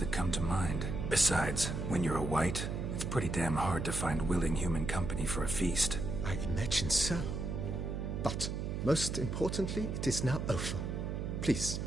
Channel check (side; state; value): right; noise; hum, 3 dB below the sound